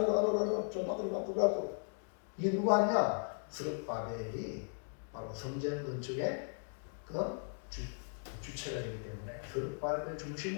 좀 바꾸고 이게 누가 하냐? 스룹바벨이 바로 성전 건축의 그 주체가 되기 때문에 스룹바벨을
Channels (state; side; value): silent; right; 53 dB below the other